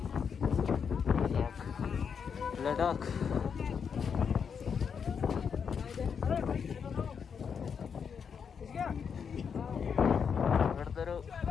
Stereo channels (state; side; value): quieter; right; 6.7 dB